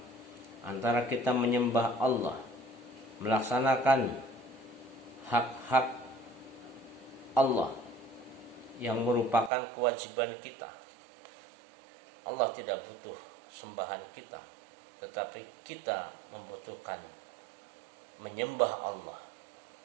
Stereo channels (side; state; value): left; drops out; at 9.5 s